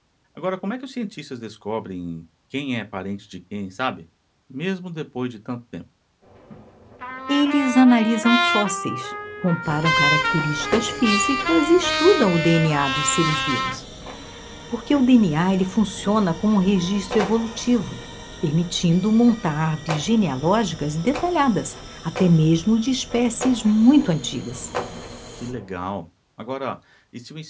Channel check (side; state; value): both; identical; correlation 1.00